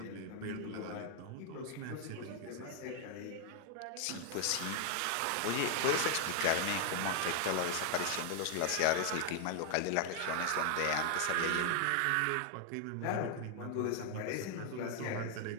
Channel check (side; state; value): both; different; correlation 0.00